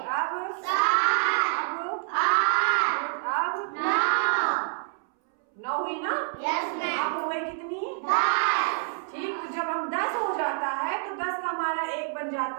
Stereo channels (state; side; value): silent; left; 60 dB below the other